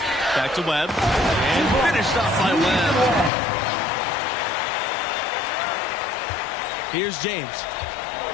Back to Webb. And finished off by Webb. Here's James.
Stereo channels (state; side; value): drops out; right; at 3.3 s